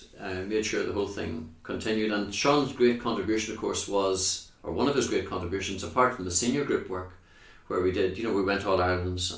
made sure the whole thing continued, and Sean's great contribution, of course, one of his great contributions, apart from the senior group work, where we did, we went All Irelands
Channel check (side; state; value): both; identical; correlation 1.00